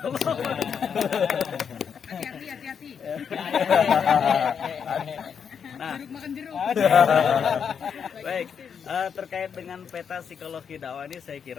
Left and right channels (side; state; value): right; quieter; 7.1 dB